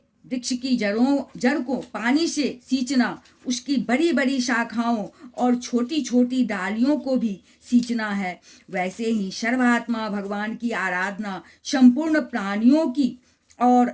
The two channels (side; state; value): both; identical; correlation 1.00